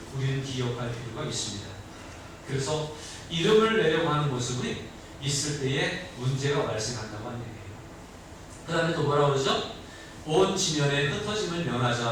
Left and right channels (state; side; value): identical; both; correlation 1.00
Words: 우리는 기억할 필요가 있습니다. 그래서 이름을 내려고 하는 모습이 있을 때에 문제가 발생한다고 하는 얘기예요. 그 다음에 또 뭐라고 그러죠? 온 지면에 흩어짐을